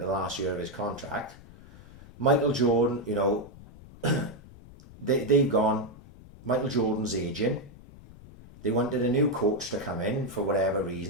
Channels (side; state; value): left; noise; rumble, 20 dB below the sound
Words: the last year of his contract. Michael Jordan, you know, they've gone. Michael Jordan's aging. They wanted a new coach to come in for whatever